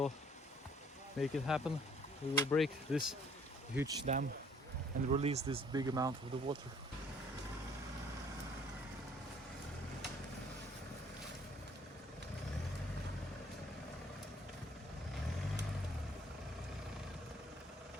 make it happen. We will break this huge dam and release this big amount of the water.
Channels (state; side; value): normal; both; correlation 0.59